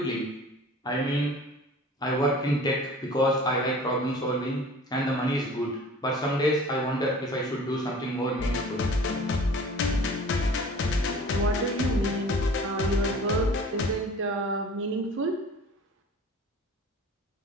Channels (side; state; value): both; normal; correlation 0.44